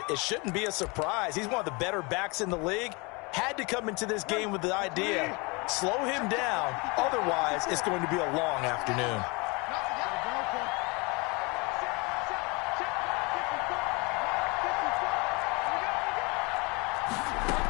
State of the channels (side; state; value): right; quieter; 28.2 dB